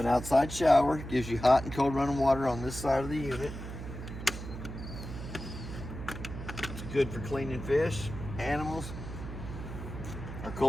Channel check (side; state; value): right; noise; hum, 9 dB below the sound